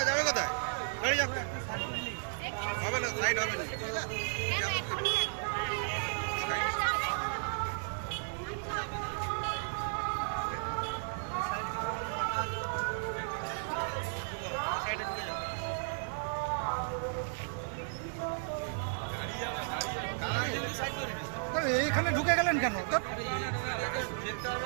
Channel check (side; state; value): left; silent; digital silence